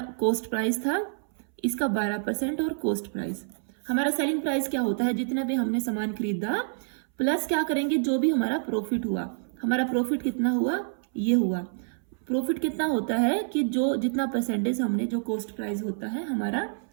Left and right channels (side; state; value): left; silent; 60 dB below the other